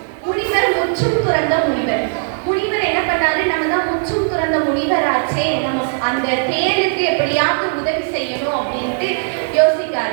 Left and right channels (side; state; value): left; silent; 61 dB below the other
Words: முனிவர் முற்றும் துறந்த முனிவர். முனிவர் என்ன பண்ணாரு, நம்ம தான் முற்றும் துறந்த முனிவர் ஆச்சே, நம்ம அந்த தேளுக்கு எப்படியாவது உதவி செய்யணும் அப்படின்ட்டு